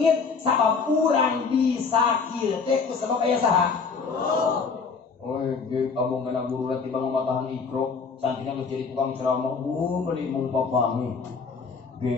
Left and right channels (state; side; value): quieter; right; 5.1 dB